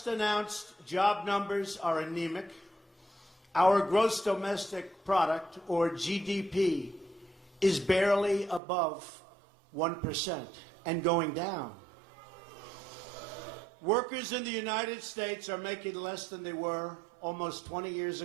announced job numbers are anemic. Our gross domestic product, or GDP, is barely above 1% and going down. Workers in the United States are making less than they were almost 20 years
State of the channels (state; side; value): drops out; left; at 8.6 s